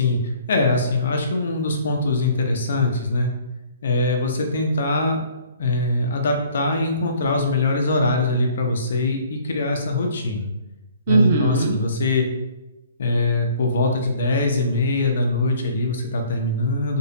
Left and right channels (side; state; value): both; inverted; correlation -0.55